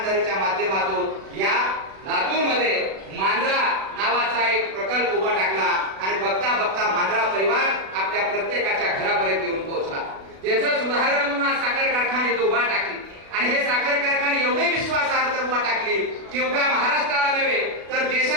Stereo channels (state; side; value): late; left; 36 ms